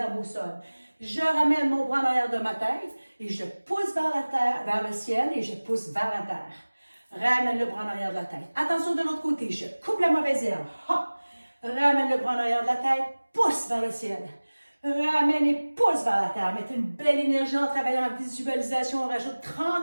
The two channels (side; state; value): both; inverted; correlation -1.00